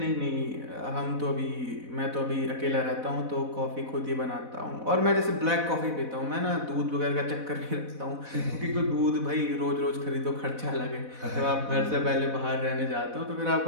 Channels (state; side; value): late; left; 4.1 ms